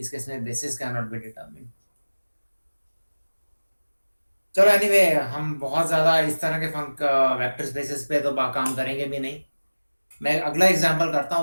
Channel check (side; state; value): both; inverted; correlation -1.00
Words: केस में basis can not be determined. चलो एनीवे, हम बहुत ज्यादा इस तरह के वेक्टर स्पेसेस पे तो काम करेंगे भी नहीं। मैं अगला एग्जांपल करता